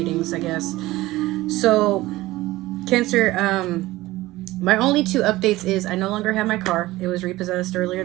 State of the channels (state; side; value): quieter; left; 17.9 dB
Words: I guess. So, Cancer, my only two updates is I no longer have my car. It was repossessed earlier